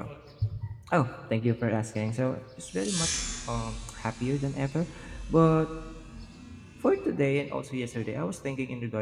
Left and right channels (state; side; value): identical; both; correlation 1.00